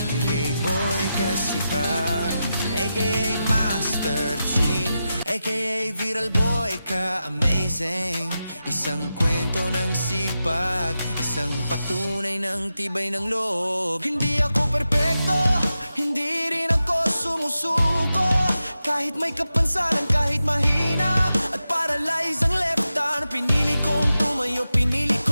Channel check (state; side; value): inverted; both; correlation -0.90